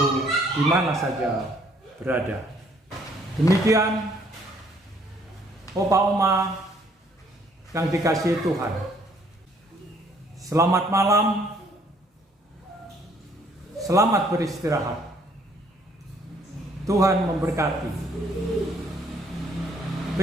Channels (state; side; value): normal; both; correlation 0.63